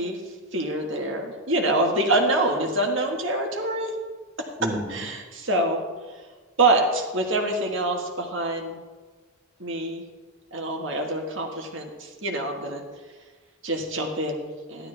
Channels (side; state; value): both; normal; correlation 0.00